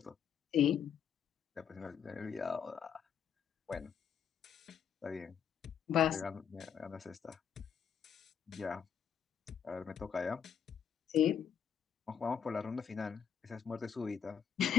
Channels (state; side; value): quieter; right; 8.3 dB